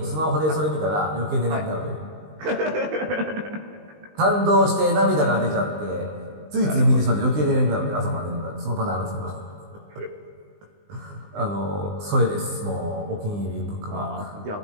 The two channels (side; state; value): left; late; 20 ms